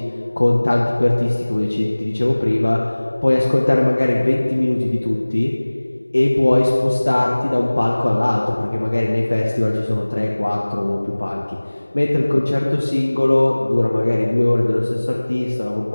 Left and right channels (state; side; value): inverted; both; correlation -1.00